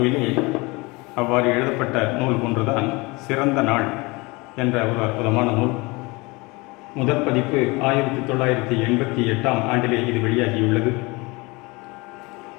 அவ்வாறு எழுதப்பட்ட நூல் ஒன்றுதான் சிறந்த நாள் என்ற ஒரு அற்புதமான நூல். முதற் பதிப்பு 1988 ஆண்டிலே இது வெளியாகியுள்ளது.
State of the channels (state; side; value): quieter; right; 25.1 dB